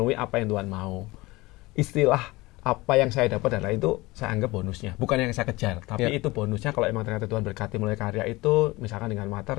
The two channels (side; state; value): right; quieter; 21.2 dB